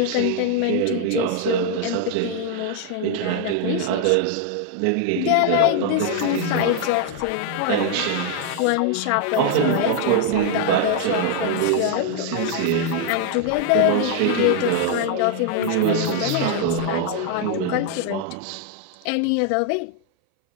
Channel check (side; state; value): both; different; correlation 0.00